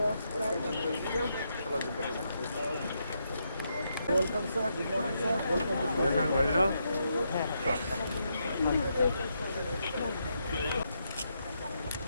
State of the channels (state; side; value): inverted; both; correlation -0.80